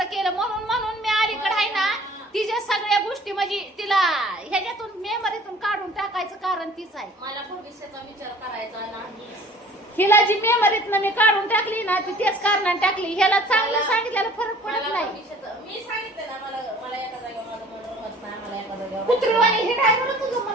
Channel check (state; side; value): normal; both; correlation 0.50